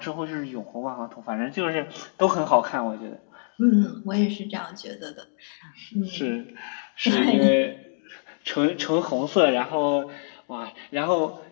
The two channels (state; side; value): silent; right; 61 dB below the other